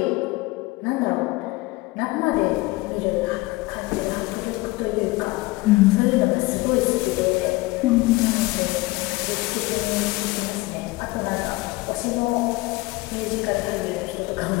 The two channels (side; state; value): right; quieter; 21.6 dB